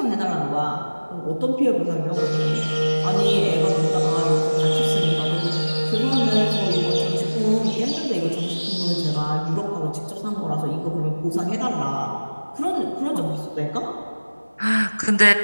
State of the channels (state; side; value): inverted; both; correlation -1.00